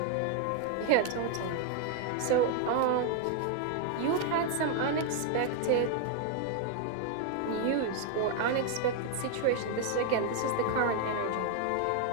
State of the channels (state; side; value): different; both; correlation 0.00